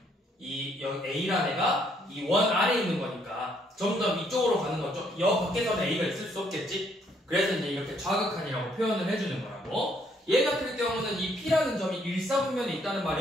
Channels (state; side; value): normal; both; correlation 0.69